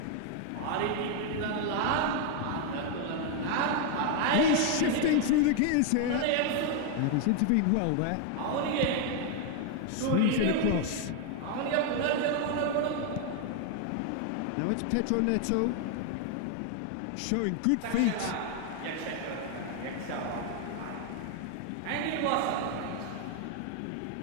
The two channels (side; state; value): both; different; correlation 0.00